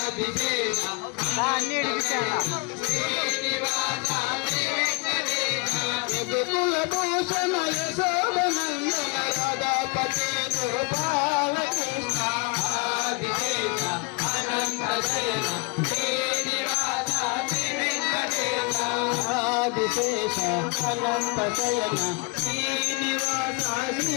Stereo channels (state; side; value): quieter; right; 30.1 dB